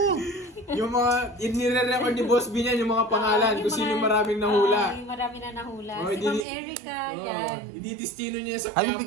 Yung mga, nire-record ni Boss B niyan, yung mga pangalan, kung sino yung maraming nahula. Yung marami na nahula. Oh, Si Ma'am Erica, yan. I-destino niya sa Ano Quiapo.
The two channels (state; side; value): drops out; left; at 6.5 s